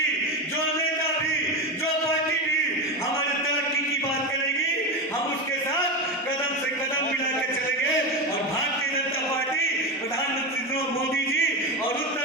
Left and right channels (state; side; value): normal; both; correlation 0.18